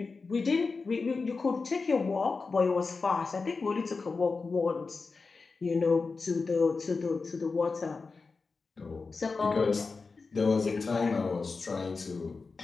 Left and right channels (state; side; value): quieter; right; 4.3 dB